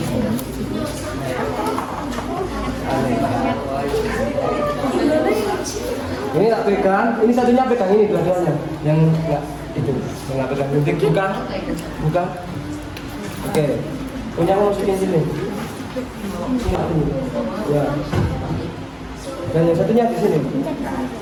Ini tak pegang, ini satunya pegang ini dua-duanya. Yang enggak itu, yang enggak pegang. Nanti buka. Buka. Oke. Punya masukin sini. Sini. Ya. Dan yang satunya di sini.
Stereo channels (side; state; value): both; identical; correlation 1.00